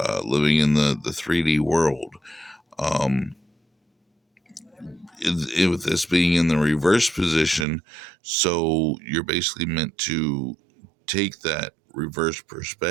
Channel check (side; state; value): left; drops out; at 7.7 s